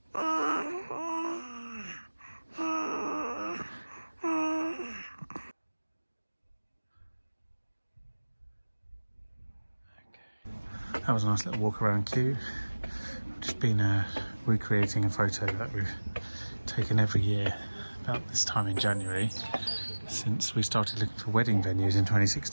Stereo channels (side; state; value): both; inverted; correlation -1.00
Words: That was a nice little walk around Kew. Just been recreating a photo that we've taken every year about this time in January since we started looking for wedding venues in